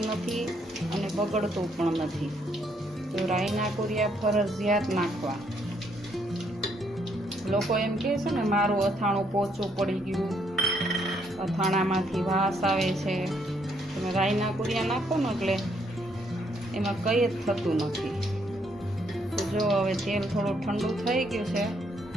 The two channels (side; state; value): both; normal; correlation 0.71